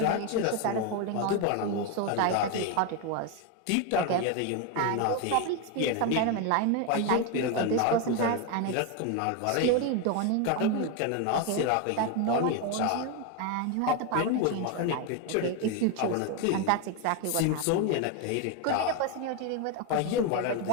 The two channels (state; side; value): different; both; correlation 0.02